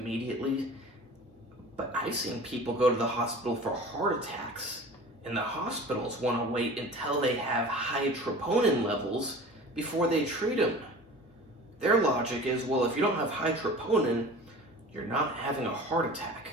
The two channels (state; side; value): normal; both; correlation 0.40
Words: But I've seen people go to the hospital for heart attacks, and the hospitals want to wait until they have high troponin levels before they treat them. Their logic is, well, if you don't have high troponin, you're not having a heart attack.